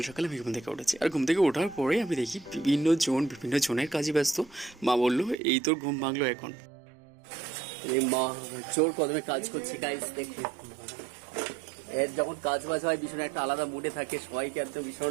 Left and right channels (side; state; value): left; drops out; at 5.4 s